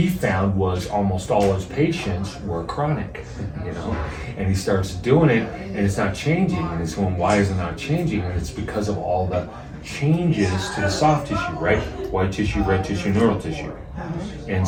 found was almost all his patients were chronic, and he starts doing it and it's not changing, and he's going, why is it not changing? And it's because of all the changes to the soft tissue, right? White tissue, red tissue, neural tissue. And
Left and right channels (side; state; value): both; identical; correlation 1.00